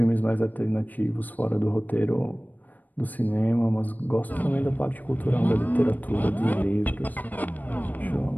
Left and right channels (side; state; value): right; late; 0.084 ms